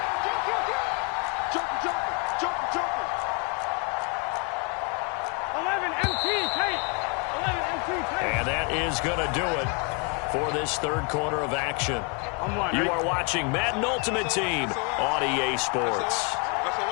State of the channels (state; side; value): quieter; right; 34.8 dB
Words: Joker. 11 MT, Tate. 11 MT, Tate. And that is going to do it for this 3rd quarter of action. You are watching Madden Ultimate Team on EA Sports.